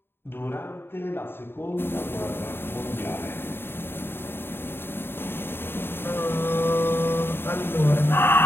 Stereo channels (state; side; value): late; right; 0.11 ms